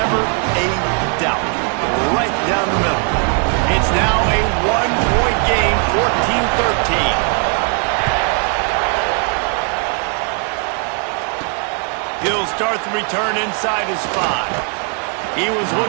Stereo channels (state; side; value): quieter; left; 39.8 dB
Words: a doubt. Right down the middle. It's now a 1-point game, 14-13. He'll start the return inside his 5. He was